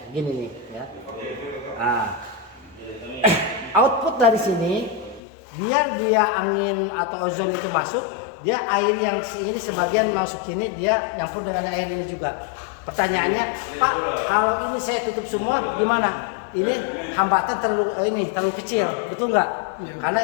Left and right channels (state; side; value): drops out; right; at 5.2 s